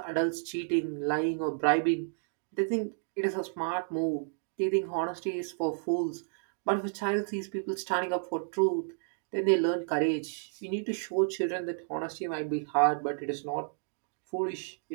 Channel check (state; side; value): silent; left; digital silence